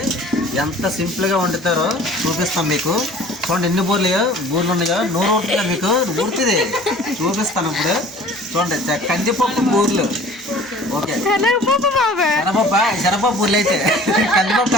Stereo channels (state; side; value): normal; both; correlation 0.47